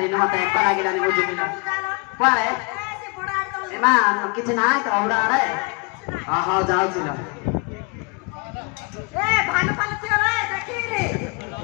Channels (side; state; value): right; quieter; 29.8 dB